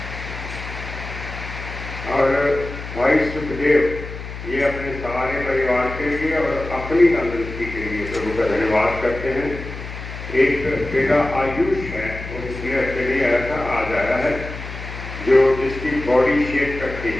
और भाई सुखदेव, ये अपने सारे परिवार के लिए और अपनी तंदुरुस्ती के लिए प्रभु का धन्यवाद करते हैं। एक बेटा आयुष है, वो पिछले हफ्ते नहीं आया था, आज आया है, जो जिसकी बॉडी शेप करती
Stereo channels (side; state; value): left; noise; hum, 10 dB below the sound